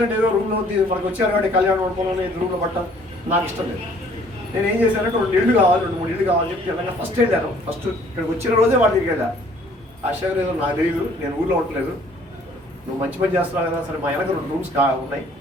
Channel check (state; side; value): normal; both; correlation 0.58